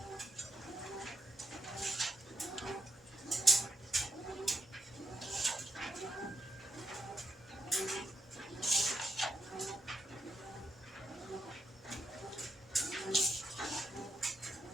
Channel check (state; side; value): normal; both; correlation 0.82